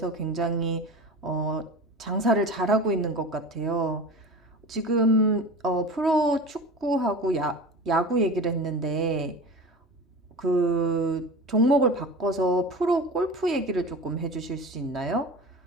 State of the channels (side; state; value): both; normal; correlation 0.33